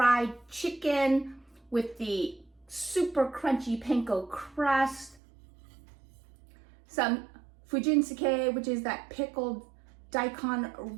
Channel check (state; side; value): drops out; left; at 5.2 s